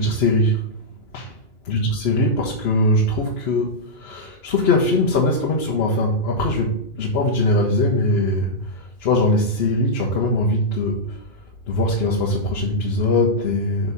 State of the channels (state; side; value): late; right; 3.0 ms